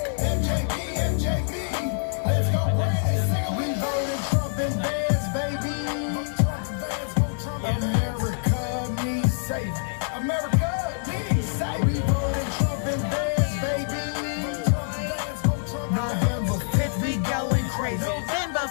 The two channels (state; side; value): silent; right; 61 dB below the other